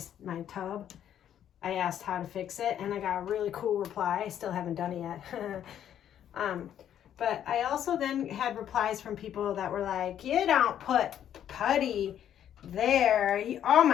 tub, I asked how to fix it and I got a really cool reply. I still haven't done it yet. But I also then had replies from people that were like, you don't put putty there. Oh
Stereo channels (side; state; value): right; quieter; 10.2 dB